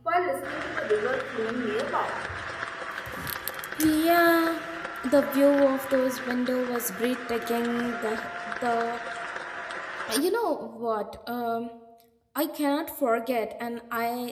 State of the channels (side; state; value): both; identical; correlation 1.00